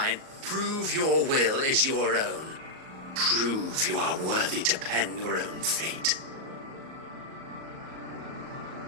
Prove your will is your own. Prove you are worthy to pen your own fate.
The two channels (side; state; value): left; late; 38 ms